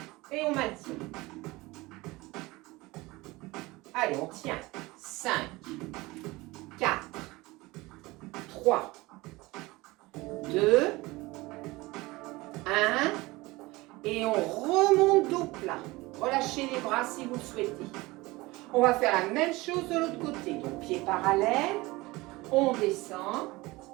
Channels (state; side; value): quieter; left; 21.4 dB